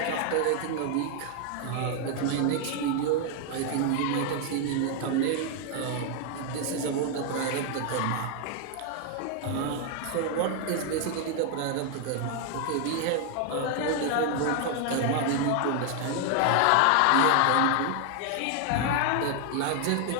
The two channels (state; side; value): different; both; correlation 0.00